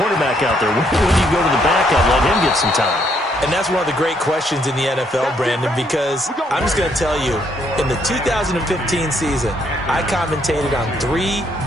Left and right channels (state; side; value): normal; both; correlation 0.71